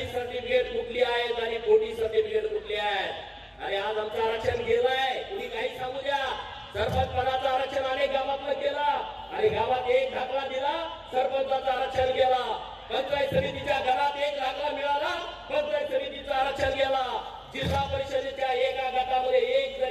सर्टिफिकेट कुठली आहेत आणि खोटी सर्टिफिकेट कुठली आहेत. अरे आज आमचं आरक्षण गेलंय, कुणी काही सांगू द्या. सरपंच पदाचं आरक्षण अनेक गावातलं केलं आणि गावात एक दाखला दिला, सरपंचाचं आरक्षण गेला. पंचायत समितीच्या घरात 1 लाखला मिळाला, पंचायत समितीचं आरक्षण गेला. जिल्हा परिषदेच्या एका गटामध्ये 1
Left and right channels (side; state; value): both; identical; correlation 1.00